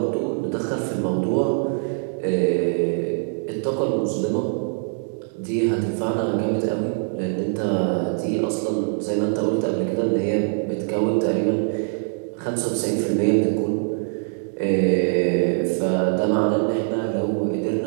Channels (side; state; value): left; silent; digital silence